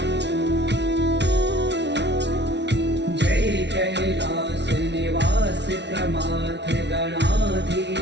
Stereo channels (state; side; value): late; left; 0.50 ms